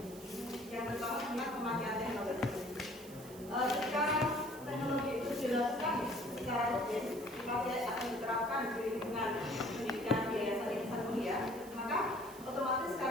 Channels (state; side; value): noise; right; hiss, 18 dB below the sound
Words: yang pertama tentang pemakaian teknologi. Ketika teknologi itu dilakukan secara rutin, dipakai akan diterapkan di lingkungan pendidikan Yayasan Insan Mulia, maka otomatis